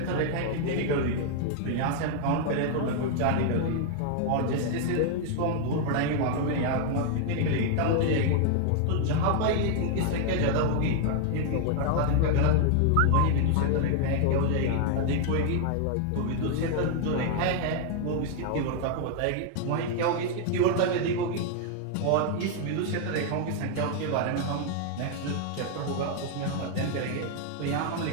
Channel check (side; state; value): both; different; correlation 0.00